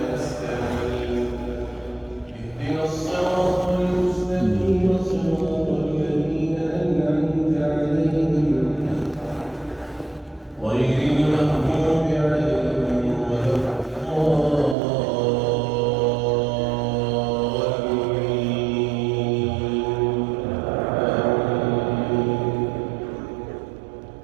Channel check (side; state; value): left; drops out; at 14.8 s